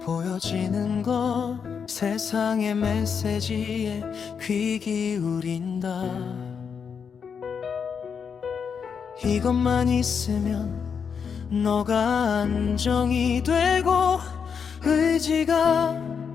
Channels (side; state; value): right; quieter; 6.5 dB